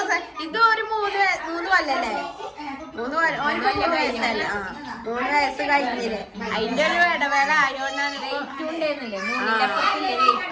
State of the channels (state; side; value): identical; both; correlation 1.00